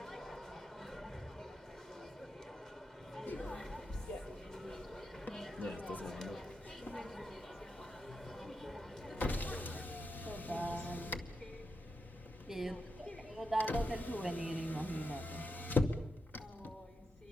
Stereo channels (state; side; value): normal; both; correlation 0.85